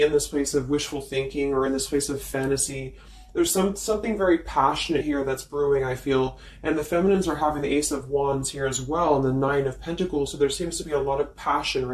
in this place of wishful thinking or in this place of fantasy. There's something very passionate here that's brewing, I feel. And the feminines are having the Ace of Wands here as well and the Nine of Pentacles. So there seems to be a lot of passion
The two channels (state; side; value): identical; both; correlation 1.00